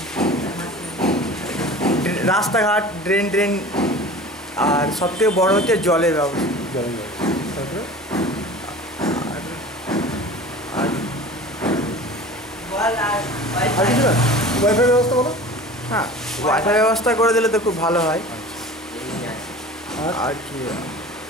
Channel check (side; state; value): both; normal; correlation 0.39